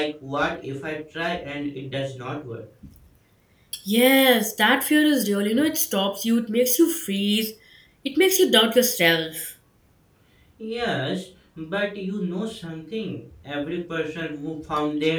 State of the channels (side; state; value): both; identical; correlation 1.00